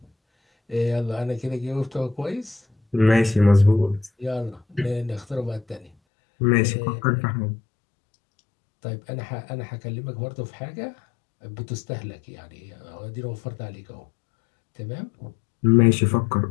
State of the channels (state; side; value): drops out; right; at 5.9 s